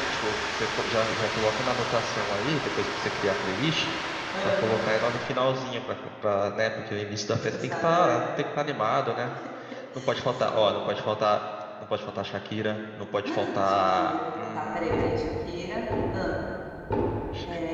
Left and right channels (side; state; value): both; identical; correlation 1.00